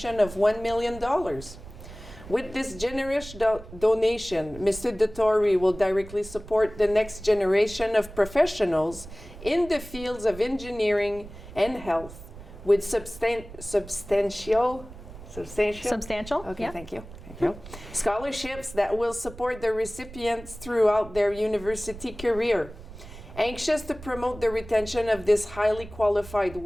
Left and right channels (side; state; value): right; noise; rumble, 16 dB below the sound